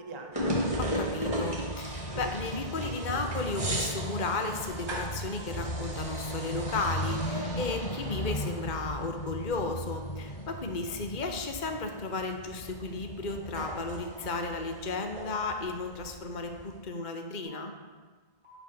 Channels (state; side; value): late; right; 2.1 ms